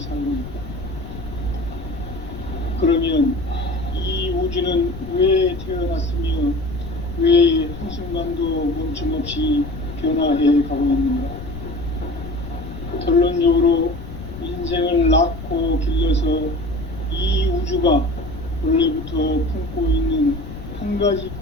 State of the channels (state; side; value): noise; left; rumble, 11 dB below the sound